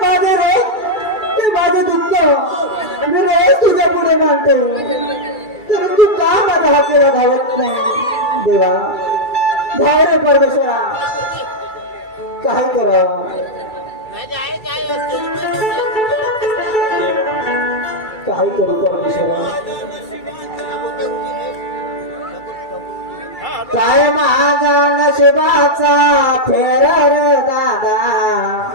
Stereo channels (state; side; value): late; right; 2.3 ms